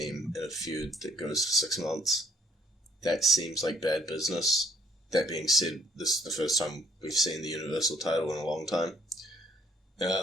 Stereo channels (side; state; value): both; normal; correlation 0.64